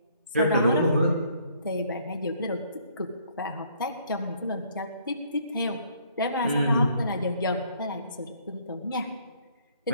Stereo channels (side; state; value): both; inverted; correlation -0.64